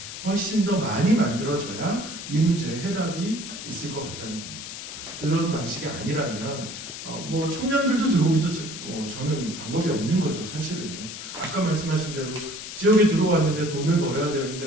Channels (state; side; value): noise; left; hiss, 10 dB below the sound